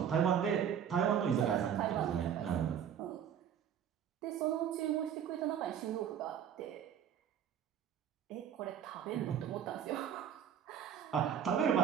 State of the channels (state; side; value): quieter; left; 8.9 dB